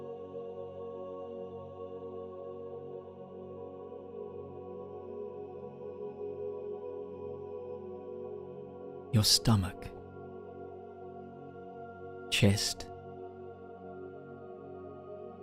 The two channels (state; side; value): identical; both; correlation 1.00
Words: Your stomach, chest,